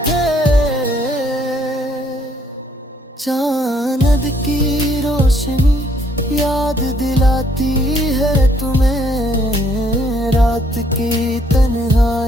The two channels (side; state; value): both; normal; correlation 0.67